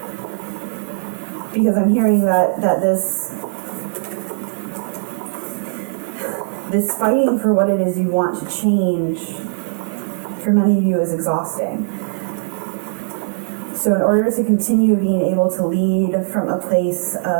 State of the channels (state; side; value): silent; left; digital silence